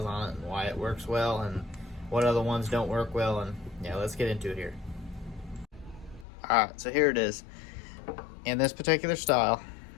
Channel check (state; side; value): drops out; right; at 6.2 s